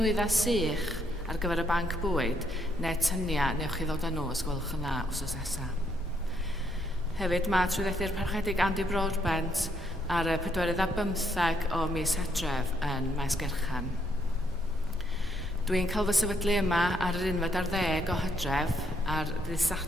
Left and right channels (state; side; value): normal; both; correlation 0.73